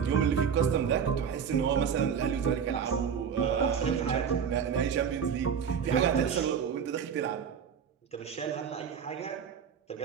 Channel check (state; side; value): quieter; left; 7.3 dB